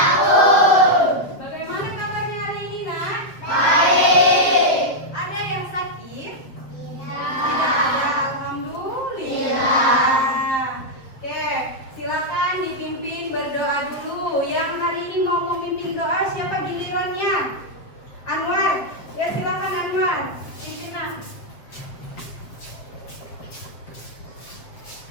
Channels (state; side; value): late; right; 7.9 ms